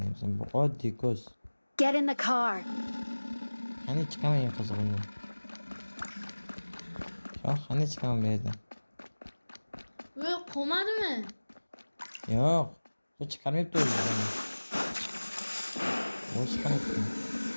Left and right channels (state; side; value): inverted; both; correlation -1.00